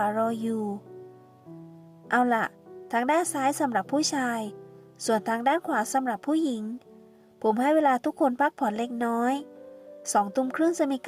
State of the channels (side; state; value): both; identical; correlation 1.00